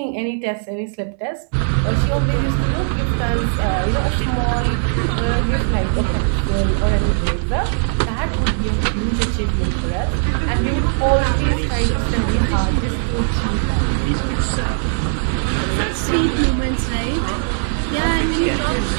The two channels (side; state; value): left; silent; digital silence